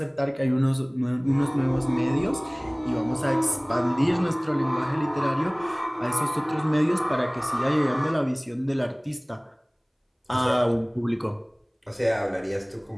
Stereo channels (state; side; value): identical; both; correlation 1.00